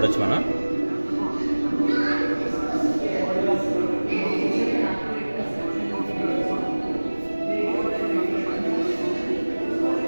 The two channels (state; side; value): inverted; both; correlation -1.00